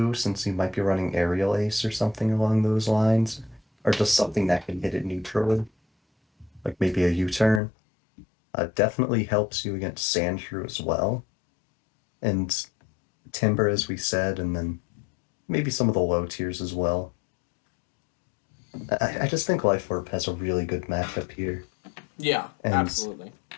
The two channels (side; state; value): right; drops out; at 7.6 s